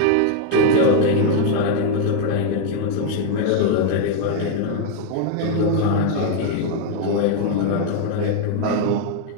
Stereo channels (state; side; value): different; both; correlation 0.01